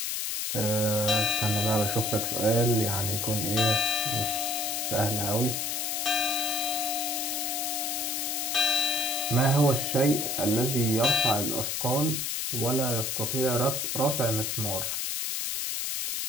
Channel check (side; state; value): left; noise; hiss, 1 dB below the sound